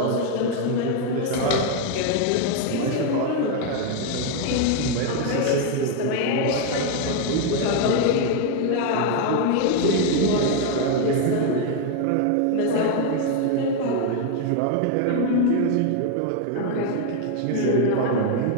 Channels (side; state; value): both; different; correlation 0.01